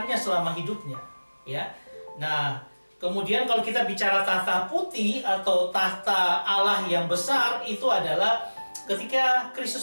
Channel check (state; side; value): inverted; both; correlation -1.00